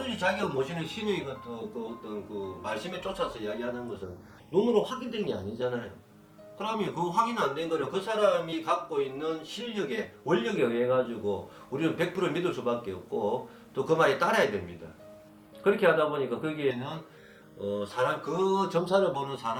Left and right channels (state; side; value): identical; both; correlation 1.00